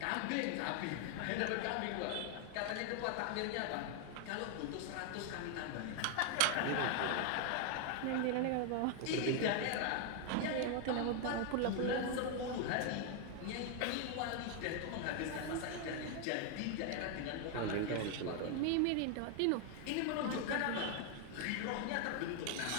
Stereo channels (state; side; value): different; both; correlation 0.00